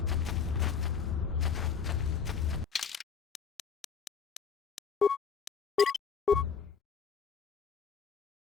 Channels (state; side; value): quieter; right; 6.5 dB